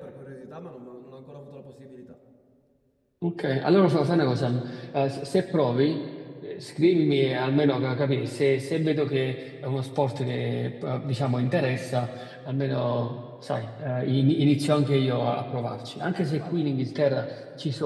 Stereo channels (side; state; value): both; identical; correlation 1.00